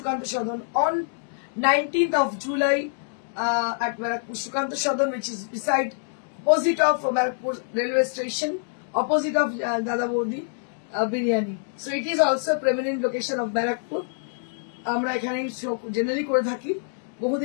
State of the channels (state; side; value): silent; right; digital silence